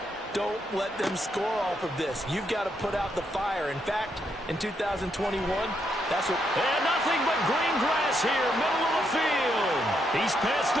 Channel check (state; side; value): normal; both; correlation 0.78